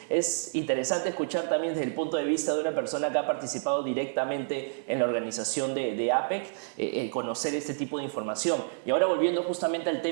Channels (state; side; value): silent; left; digital silence